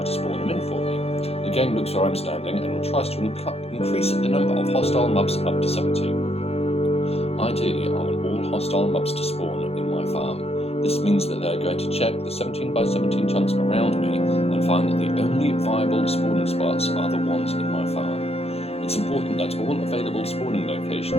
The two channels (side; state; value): right; late; 0.29 ms